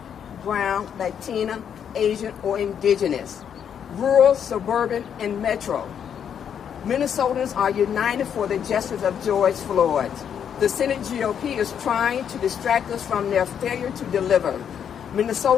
brown, Latina, Asian, or indigenous, rural, suburban, and metro, Minnesotans are united for the justice of George Floyd. The Senate GOP is trying to distract us from their failure to deliver.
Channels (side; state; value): right; quieter; 8.3 dB